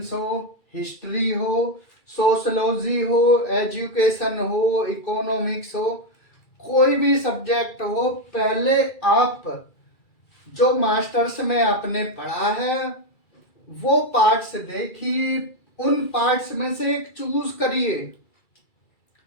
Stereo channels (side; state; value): right; late; 2.3 ms